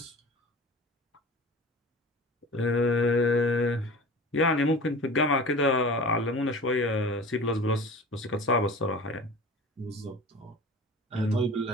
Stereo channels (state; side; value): normal; both; correlation 0.38